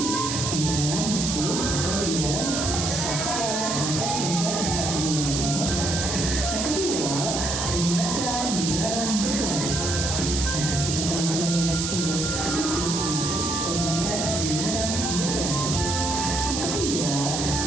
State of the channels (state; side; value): noise; right; hiss, 2 dB below the sound